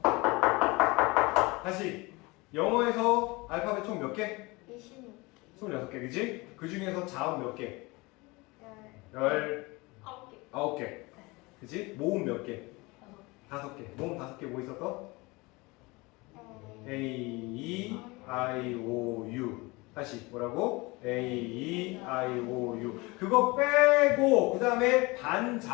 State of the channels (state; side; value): quieter; right; 24.2 dB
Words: 다시. 영어에서 알파벳 총 몇 개? 26개. 26개, 그지? 그 중에서 자음 몇 개? 9개. 19개. 그지? 모음 몇 개? 5개. 모음 5개 뭐 있었어? A, E, I, O, U. 다시 뭐라고? A, E, I, O, U. 그거 빼고 그 다음에